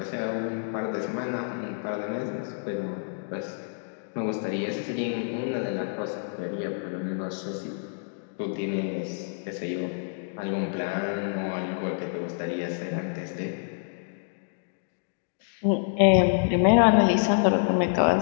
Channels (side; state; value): right; silent; digital silence